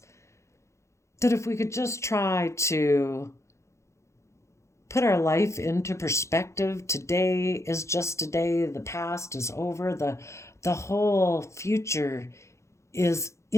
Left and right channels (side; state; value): right; late; 0.14 ms